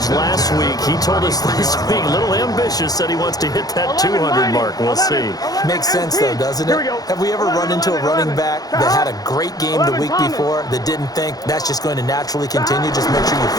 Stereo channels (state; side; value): late; right; 0.18 ms